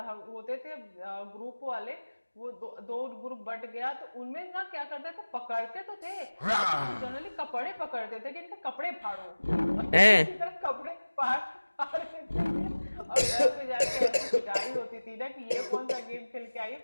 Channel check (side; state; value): both; inverted; correlation -1.00